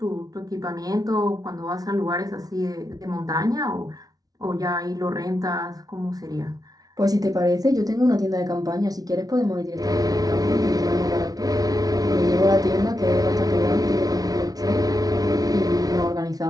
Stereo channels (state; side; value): late; left; 0.18 ms